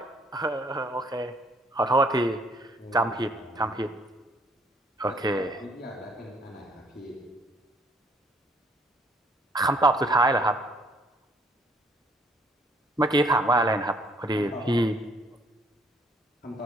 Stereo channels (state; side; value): normal; both; correlation 0.63